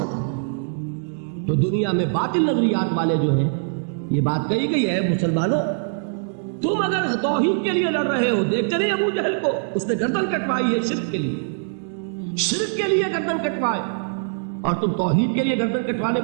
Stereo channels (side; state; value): left; silent; digital silence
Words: آئیں گے. تو دنیا میں باطل نظریات والے جو ہیں, یہ بات کہی گئی ہے مسلمانوں, تم اگر توحید کے لیے لڑ رہے ہو, دیکھتے نہیں ابو جہل کو, اس نے گردن کٹوائی ہے شرک کے لیے, شرک کے لیے گردن کٹوائے, اور تم توحید کے لیے گردن کٹوانے